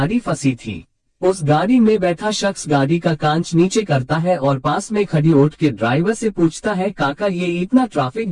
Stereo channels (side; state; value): both; identical; correlation 1.00